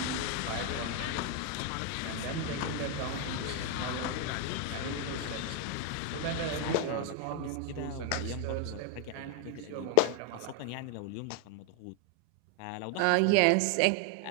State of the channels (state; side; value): different; both; correlation 0.01